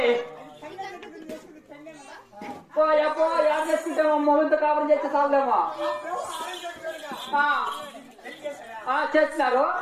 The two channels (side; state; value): both; identical; correlation 1.00